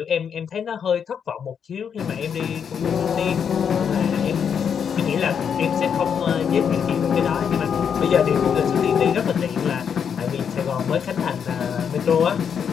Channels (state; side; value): quieter; right; 7.4 dB